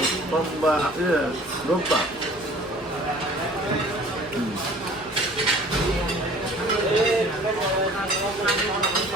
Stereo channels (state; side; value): normal; both; correlation 0.49